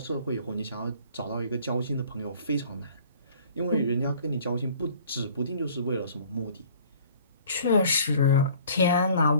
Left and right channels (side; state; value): both; inverted; correlation -0.52